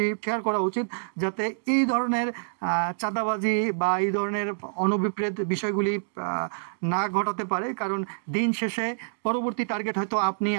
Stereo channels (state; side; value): silent; left; digital silence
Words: শেয়ার করা উচিত, যাতে এই ধরনের চাঁদাবাজি বা এই ধরনের অনভিপ্রেত বিষয়গুলি না ঘটাতে পারে। কারণ দিন শেষে পরবর্তী টার্গেট হয়তো আপনি,